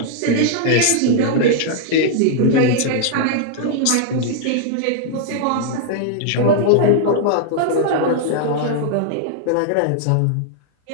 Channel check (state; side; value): different; both; correlation -0.01